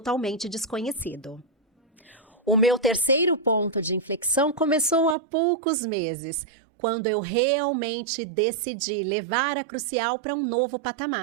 desconhecido. O meu terceiro ponto de inflexão começou há poucos meses, quando eu realmente decidi levar a Crucial para um novo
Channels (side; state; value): left; drops out; at 5.2 s